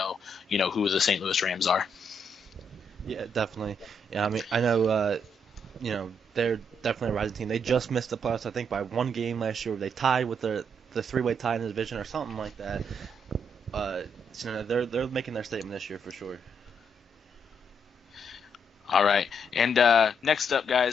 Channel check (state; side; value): normal; both; correlation 0.75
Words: who the St. Louis Rams are. Yeah, definitely. Yeah, I mean, I know, they're definitely a rising team. They just missed the playoffs, I think, by one game last year. They tied with the three-way tie in the division or something like that. They're making their statement this year for sure. All right, and next up,